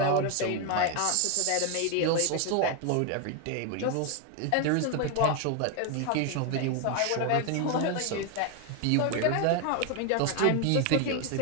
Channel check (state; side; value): different; both; correlation 0.01